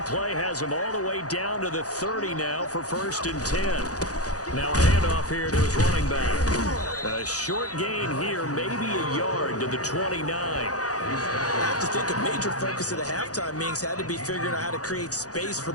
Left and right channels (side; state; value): right; late; 0.67 ms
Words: play has them all the way down to the 30 now for 1st and 10. Now a handoff here to his running back. A short gain here, maybe a yard to the 29. I have to think a major focus of the halftime meetings had to be figuring out how to create space for